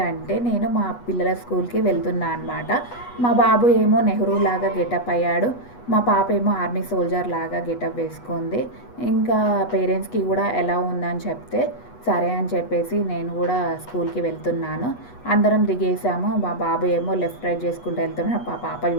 నేను మా పిల్లల స్కూల్కి వెళ్తున్నా అనమాట. మా బాబు ఏమో నెహ్రూ లాగా గెటప్ అయ్యాడు, మా పాప ఏమో ఆర్మీ సోల్జర్ లాగా గెటప్ వేసుకుంది. ఇంకా పేరెంట్స్కి కూడా ఎలా ఉందని చెప్తే సరే అని చెప్పేసి నేను కూడా స్కూల్కి వెళ్తున్నాను. అందరం దిగేసాము. మా బాబు ఏమో లెఫ్ట్ రైట్ చేసుకుంటూ వెళ్తున్నాడు, మా పాప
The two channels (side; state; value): right; late; 8.2 ms